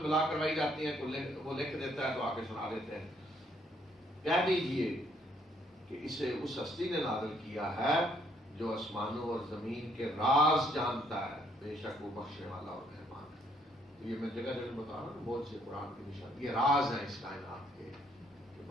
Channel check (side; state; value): both; normal; correlation 0.68